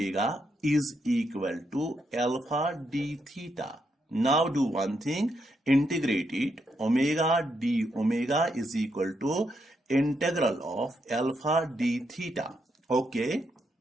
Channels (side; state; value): both; normal; correlation 0.80